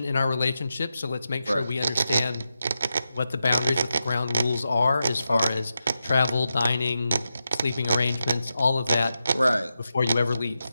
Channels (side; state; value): both; inverted; correlation -0.89